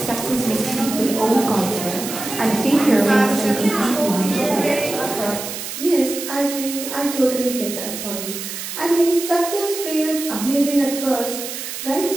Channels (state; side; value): noise; right; hiss, 7 dB below the sound